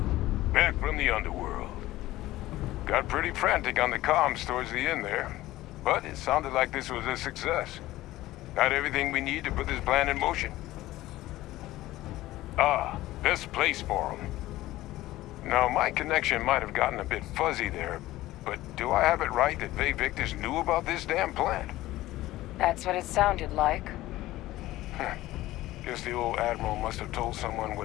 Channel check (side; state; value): right; quieter; 16.5 dB